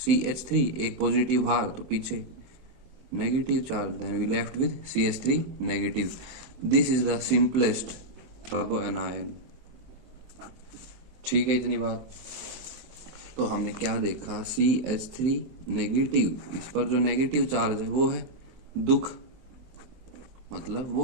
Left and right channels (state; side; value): late; left; 23 ms